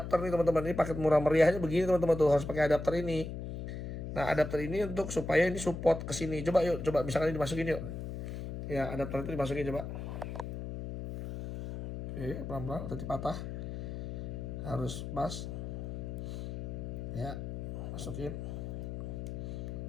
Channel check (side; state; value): left; noise; hum, 6 dB below the sound